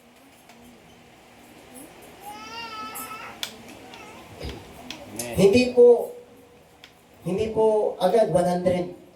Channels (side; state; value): both; identical; correlation 1.00